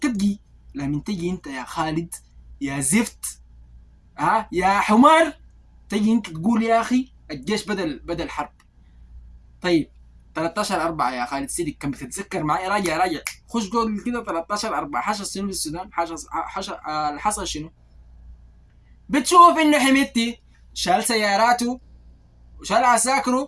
تجي انت يا خالد يا زفت، يا حمار، تجي انت تقول يا اخي الجيش بدل حرب. طيب 13/4 يا خالد سيدك كان بتتذكر معي؟ راجع خش جوجل كده. 13/4 حصل شنو في السودان؟ حصل حصل شنو؟ بتشوف انه حميدتي شال سياراته وشال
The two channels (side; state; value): both; identical; correlation 1.00